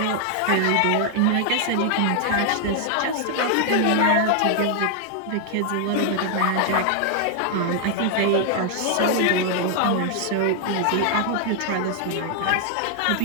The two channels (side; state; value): both; different; correlation 0.00